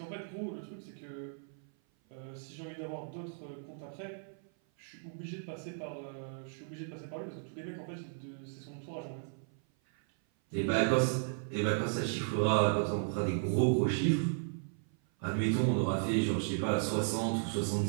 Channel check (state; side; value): silent; left; 54 dB below the other